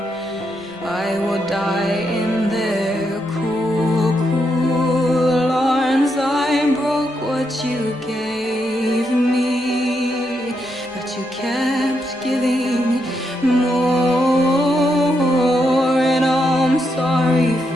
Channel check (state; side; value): normal; both; correlation 0.81